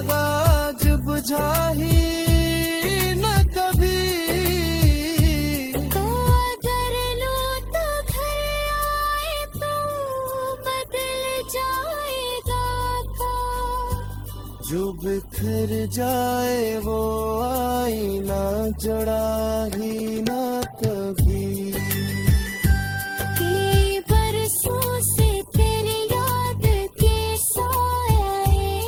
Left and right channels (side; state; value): both; identical; correlation 1.00